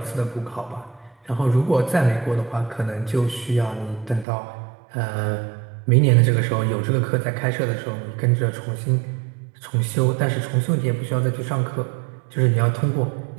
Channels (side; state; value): left; drops out; at 4.2 s